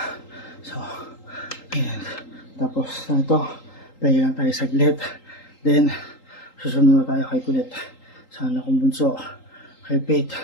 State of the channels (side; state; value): right; late; 3.8 ms